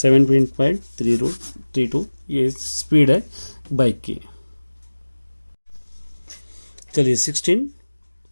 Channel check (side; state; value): both; inverted; correlation -1.00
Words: ये स्पीड है बाइक की। चलिए 16,